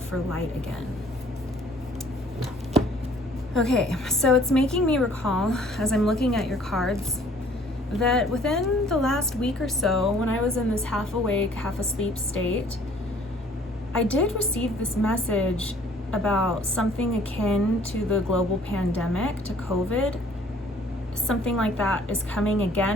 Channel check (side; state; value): both; normal; correlation 0.56